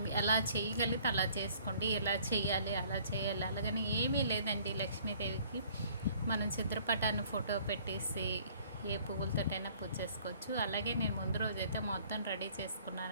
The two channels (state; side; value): inverted; both; correlation -0.56